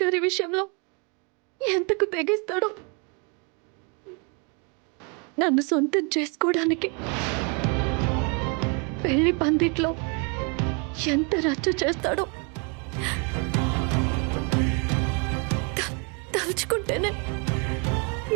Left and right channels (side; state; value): left; quieter; 34.0 dB